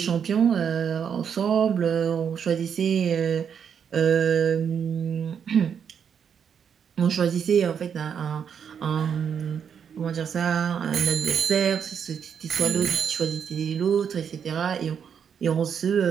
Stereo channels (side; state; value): left; quieter; 7.5 dB